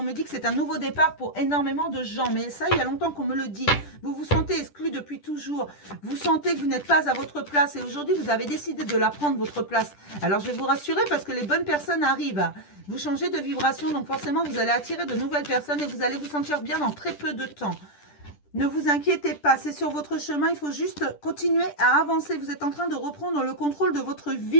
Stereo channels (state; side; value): late; right; 10 ms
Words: me dit que c'est un nouveau départ pour énormément de gens. Mais ça, il y a longtemps qu'on me le dit. Vous vous sentez exclu depuis toujours. Vous sentez que vous n'êtes pas à votre place. Et aujourd'hui, vous avez décidé de la prendre, votre place. Alors, je vais vous rassurer parce que les bonnes personnes arrivent. Vous changez de vibration, donc forcément, vous allez attirer de nouvelles personnes et vous allez vous sentir bien dans très peu de temps. Ne vous inquiétez pas, c'est sur votre chemin. Il faut juste continuer à avancer. Vous êtes en train de reprendre le contrôle de votre